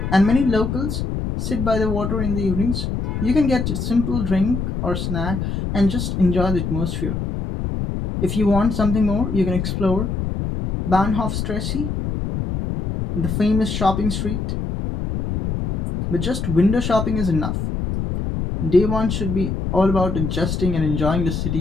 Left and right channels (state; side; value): noise; left; rumble, 3 dB below the sound